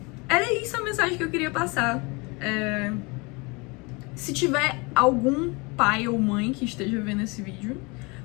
era isso a mensagem que eu queria passar. Se tiver algum pai ou mãe que esteja vendo esse vídeo,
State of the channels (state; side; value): quieter; right; 27.7 dB